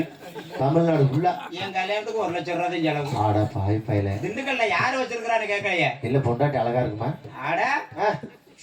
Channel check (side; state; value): both; identical; correlation 1.00